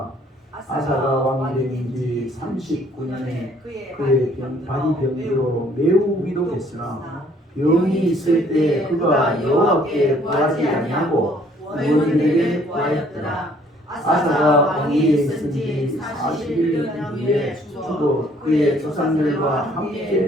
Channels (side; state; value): both; normal; correlation 0.61